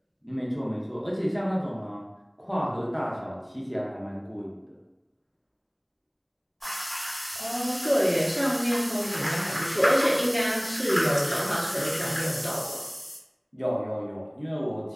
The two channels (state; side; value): identical; both; correlation 1.00